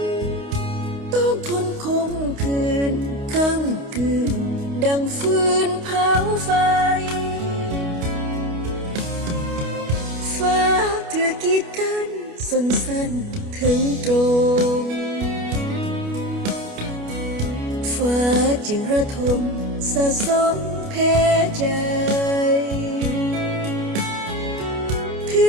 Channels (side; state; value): left; late; 29 ms